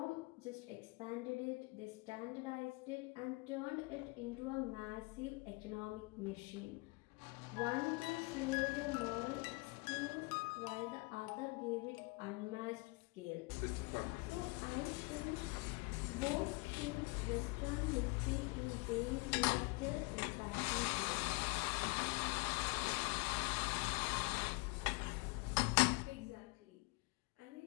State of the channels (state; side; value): quieter; right; 27.7 dB